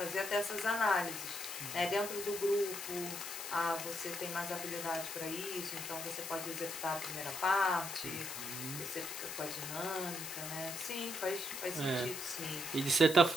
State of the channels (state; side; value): noise; left; hiss, 7 dB below the sound